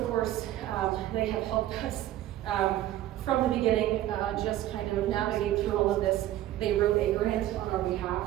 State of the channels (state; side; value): quieter; left; 13.7 dB